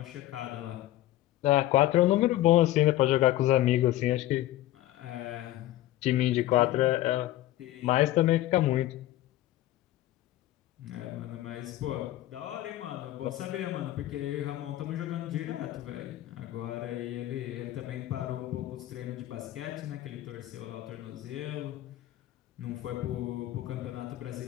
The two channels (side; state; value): right; quieter; 14.8 dB